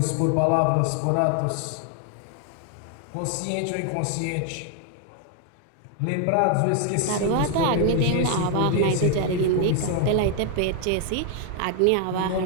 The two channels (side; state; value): both; different; correlation 0.00